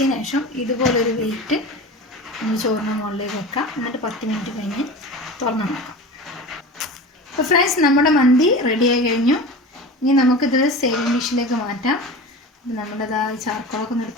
ശേഷം ഇതുപോലൊരു വെയിറ്റ് നമ്മൾ ചോറിന് മുകളിലേക്ക് വെക്കാം. എന്നിട്ട് 10 മിനിറ്റ് കഴിഞ്ഞ് തുറന്ന് നോക്കാം. അപ്പോൾ ഫ്രണ്ട്സ്, നമ്മുടെ മന്തി റെഡിയായി കഴിഞ്ഞു. ഇനി നമുക്കിത് സേവിങ് ഡിഷിലേക്ക് മാറ്റാം. അപ്പോൾ നമ്മുടെ ചാർക്കോളൊക്കെ ഒന്ന്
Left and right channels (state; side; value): normal; both; correlation 0.32